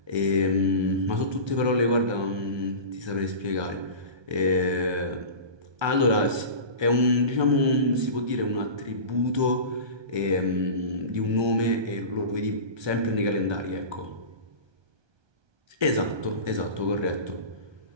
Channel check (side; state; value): left; late; 1.2 ms